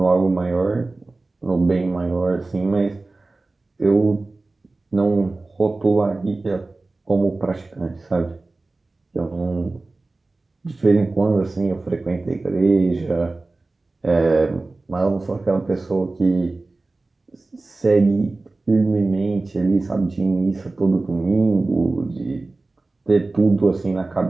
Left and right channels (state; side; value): quieter; left; 3.3 dB